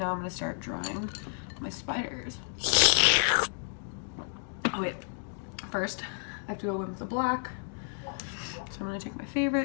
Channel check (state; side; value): silent; right; 57 dB below the other